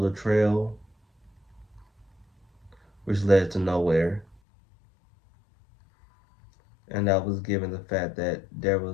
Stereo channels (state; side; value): drops out; right; at 4.4 s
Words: trail, which led to nowhere. And that was given the fact that there